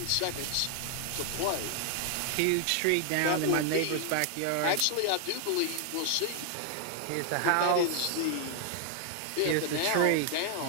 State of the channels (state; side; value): different; both; correlation 0.00